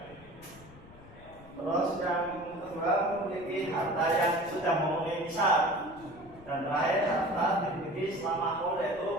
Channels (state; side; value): noise; left; rumble, 21 dB below the sound